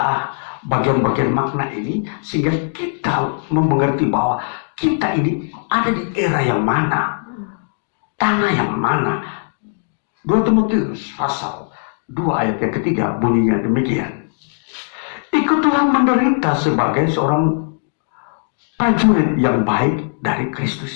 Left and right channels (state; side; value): silent; right; digital silence